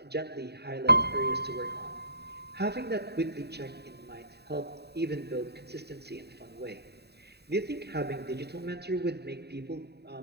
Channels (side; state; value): left; late; 0.48 ms